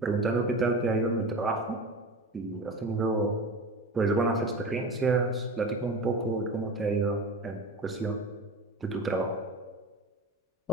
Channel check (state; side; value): normal; both; correlation 0.30